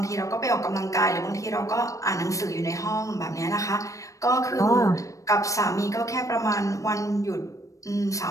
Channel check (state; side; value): late; right; 0.16 ms